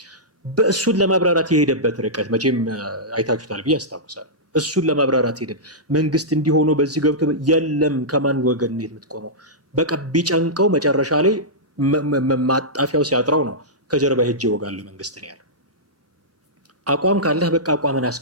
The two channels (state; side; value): normal; both; correlation -0.14